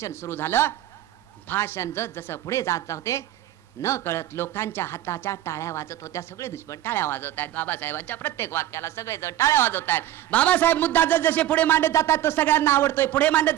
सुरू झालं, भाषण जसं पुढे जात होते न कळत लोकांच्या हाताच्या टाळ्या वाजत होत्या. सगळे दुश्मन टाळ्या वाजवत आहेत. बाबासाहेबांच्या प्रत्येक वाक्याला सगळेजण टाळ्या वाजवत आहेत. बाबासाहेब मुद्दा जसे पुढे मांडत जातात तो सगळ्यांना आवडतोय, पुढे मांडत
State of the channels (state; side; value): quieter; left; 13.1 dB